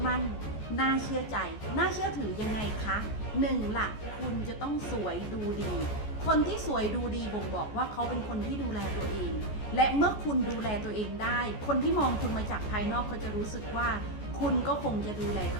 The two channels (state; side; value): late; right; 14 ms